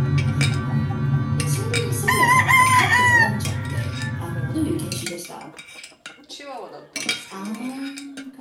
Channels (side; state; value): both; identical; correlation 1.00